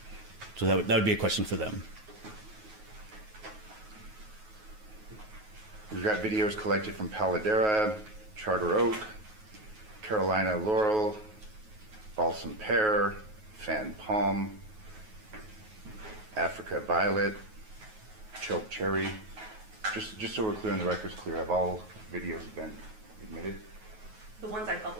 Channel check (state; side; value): late; left; 9.3 ms